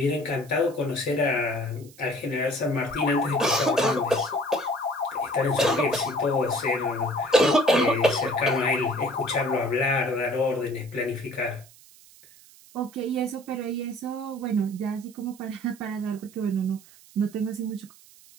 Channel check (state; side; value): noise; right; hiss, 24 dB below the sound